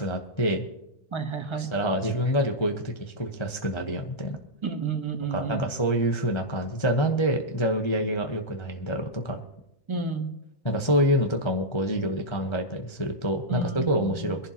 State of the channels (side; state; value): right; late; 1.3 ms